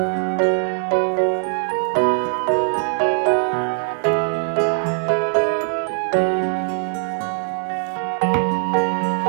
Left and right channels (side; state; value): left; silent; digital silence